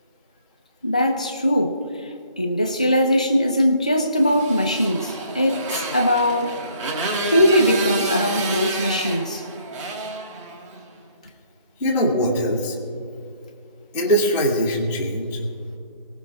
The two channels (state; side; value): inverted; both; correlation -0.61